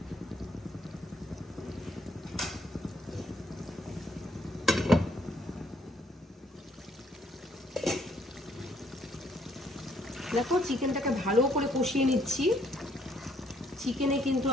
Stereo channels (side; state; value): both; normal; correlation 0.67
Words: দেখো চিকেনটাকে ভালো করে কষিয়ে নিচ্ছি। চিকেনে কিন্তু